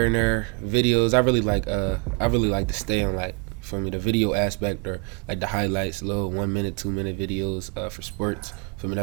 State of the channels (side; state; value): left; quieter; 33.1 dB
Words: and there, videos. I really like to stay on like for me the video aspect or like the highlights, little 1 minute, 2 minute videos for sports. For me,